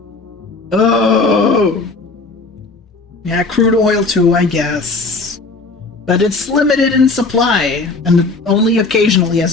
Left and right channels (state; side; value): quieter; right; 3.7 dB